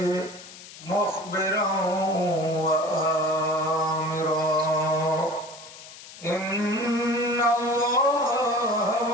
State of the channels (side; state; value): left; noise; hiss, 17 dB below the sound